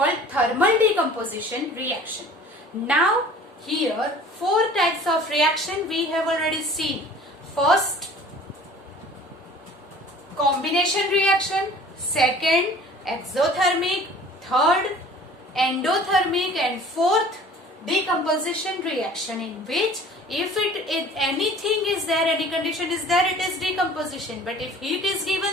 thermal decomposition reaction. Now here 4 types of reaction we have already seen. First, combination reaction. Second, exothermic. Third, endothermic. And fourth, decomposition reaction, in which if anything is there, any condition is there, it is decomposition. But if heat is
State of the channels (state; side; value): normal; both; correlation 0.47